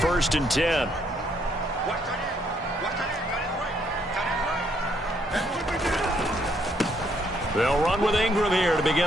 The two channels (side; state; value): both; normal; correlation 0.71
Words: and 10. They'll run with Ingram here to